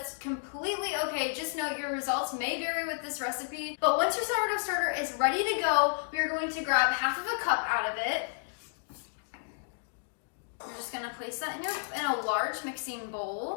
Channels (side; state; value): right; silent; digital silence